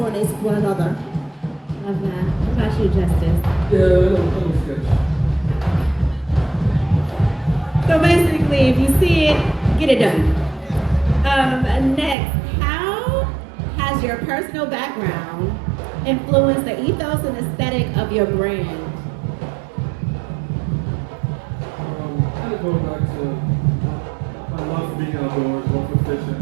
with one another. Love that. What about you, Justice? Yeah, I don't sketch. So basically, if you see it, get it done. Next, how has your personal background influenced the ethos and aesthetic of your brand? Kind of going back to my love for being outdoors, love for fishing.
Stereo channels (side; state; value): left; drops out; at 12.2 s